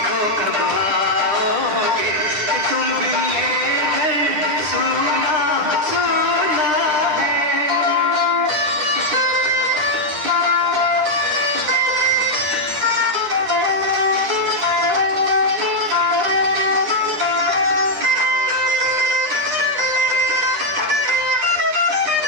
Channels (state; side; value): late; left; 9.9 ms